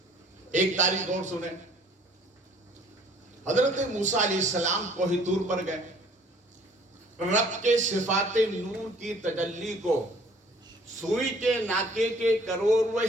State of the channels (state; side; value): normal; both; correlation 0.56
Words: ایک تاریخ اور سنیں. حضرت موسیٰ علیہ السلام کوہ طور پر گئے. رب کے صفات نور کی تجلی کو سوئی کے ناکے کے